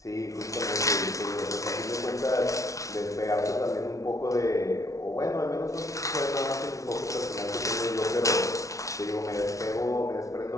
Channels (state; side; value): late; right; 0.16 ms